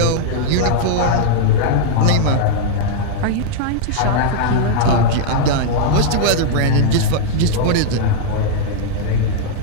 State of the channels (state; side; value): different; both; correlation -0.01